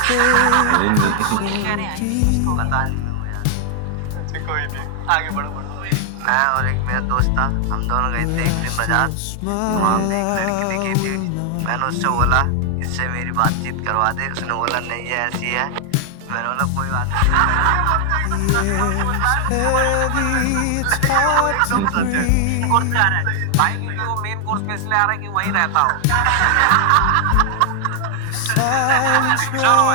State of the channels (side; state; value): both; different; correlation 0.00